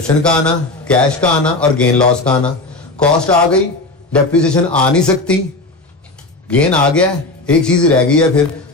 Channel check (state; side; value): quieter; right; 3.1 dB